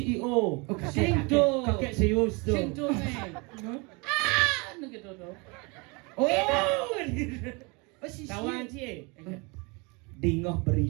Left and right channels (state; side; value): quieter; left; 29.0 dB